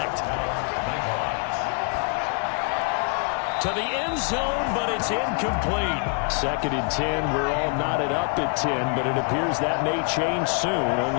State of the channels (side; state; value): right; quieter; 37.0 dB